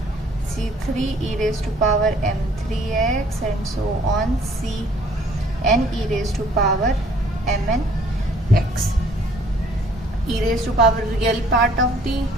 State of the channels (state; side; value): normal; both; correlation 0.59